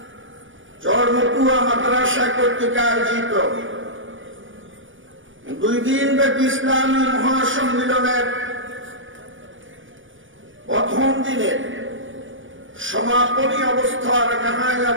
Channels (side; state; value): left; late; 0.57 ms